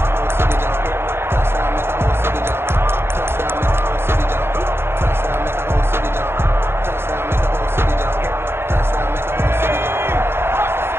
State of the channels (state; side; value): late; left; 0.11 ms